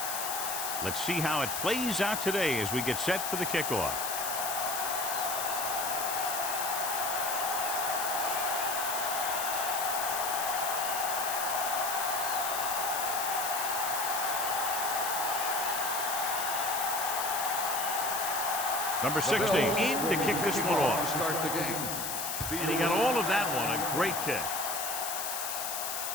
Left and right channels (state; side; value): noise; left; hiss, 3 dB below the sound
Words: Let's see how it plays out today as we get set for the kickoff. Number 60 in to kick this one off. Start the game. And he got all of that one. A great kick.